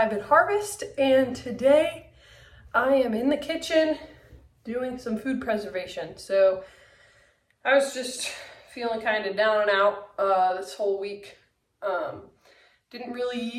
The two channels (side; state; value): both; identical; correlation 1.00